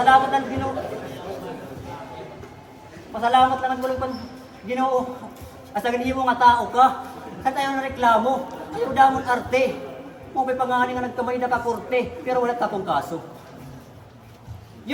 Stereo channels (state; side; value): identical; both; correlation 1.00